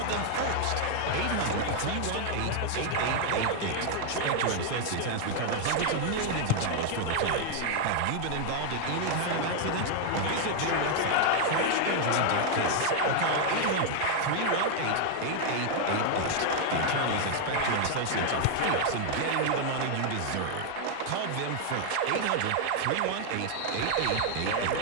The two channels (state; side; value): different; both; correlation 0.00